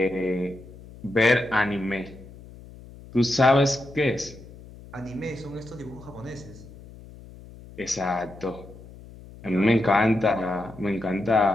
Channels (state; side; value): noise; left; hum, 18 dB below the sound